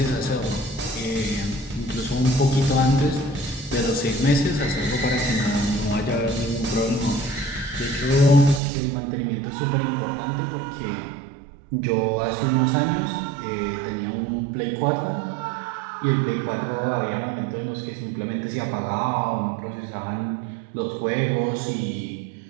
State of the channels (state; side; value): drops out; left; at 8.6 s